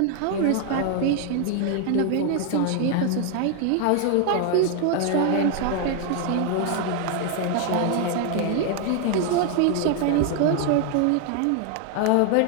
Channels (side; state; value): both; different; correlation 0.00